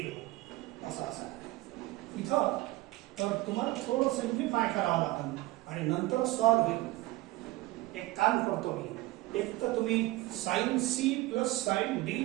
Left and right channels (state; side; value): quieter; left; 19.1 dB